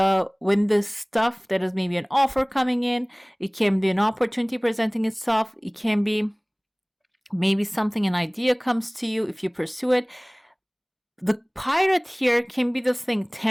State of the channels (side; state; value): both; identical; correlation 1.00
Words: when the stuff that is maybe an offer coming in, it can be an opportunity presenting itself. It can be maybe an idea comes to you if you pursue it. The pirate here can be this thing